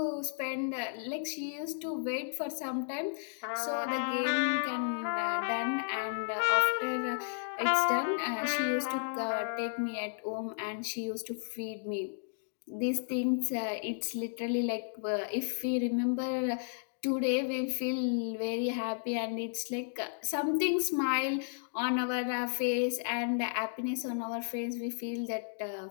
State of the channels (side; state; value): right; silent; digital silence